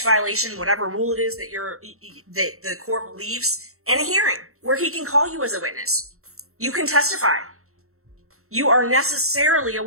violation, whatever rule it is that the court believes, and a hearing where he can call you as a witness. You can testify. You are necessarily a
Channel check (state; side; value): late; left; 0.63 ms